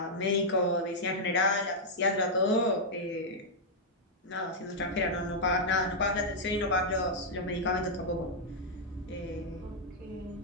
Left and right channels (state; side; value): normal; both; correlation -0.06